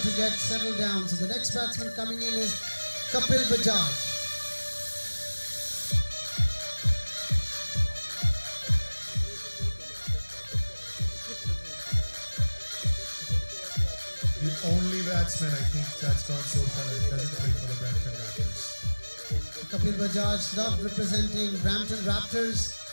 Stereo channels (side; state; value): both; inverted; correlation -1.00